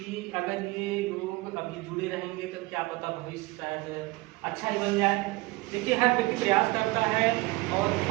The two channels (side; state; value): left; quieter; 22.3 dB